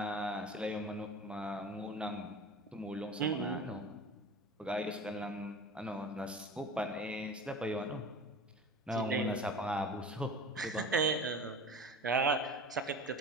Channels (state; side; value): normal; both; correlation 0.36